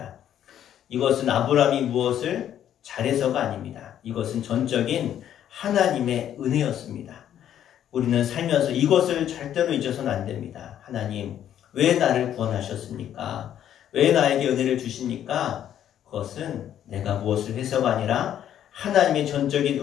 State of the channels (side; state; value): right; quieter; 10.5 dB